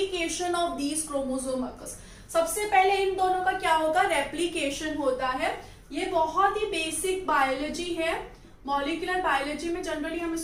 of these chromosome occurs. सबसे पहले इन दोनों का क्या होगा? रेप्लिकेशन होता है। ये बहुत ही बेसिक बायोलॉजी है, मॉलिक्यूलर बायोलॉजी में जनरली हम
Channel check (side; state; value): both; identical; correlation 1.00